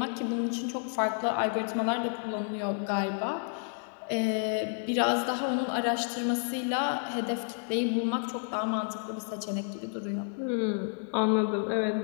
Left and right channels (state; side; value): silent; right; 57 dB below the other